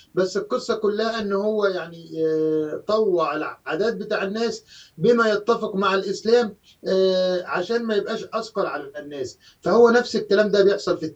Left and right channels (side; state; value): both; identical; correlation 1.00